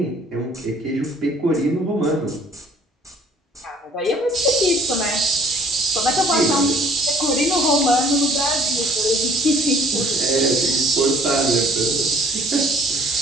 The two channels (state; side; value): normal; both; correlation 0.57